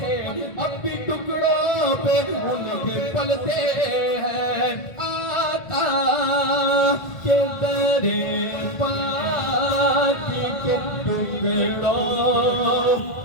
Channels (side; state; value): right; late; 2.1 ms